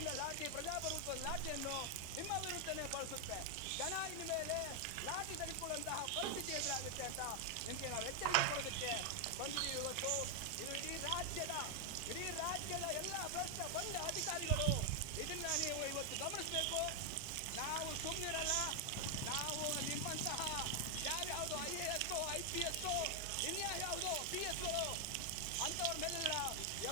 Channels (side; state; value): both; different; correlation 0.00